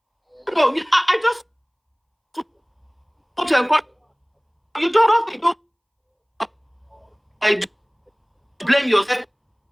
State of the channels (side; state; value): both; identical; correlation 1.00